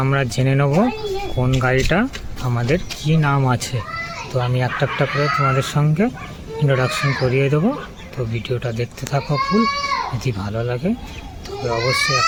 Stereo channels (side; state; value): both; identical; correlation 1.00